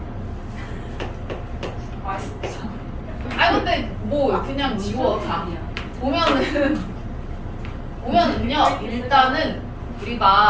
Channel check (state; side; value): identical; both; correlation 1.00